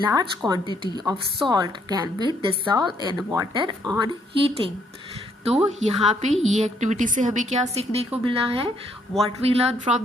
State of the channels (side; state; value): both; normal; correlation 0.69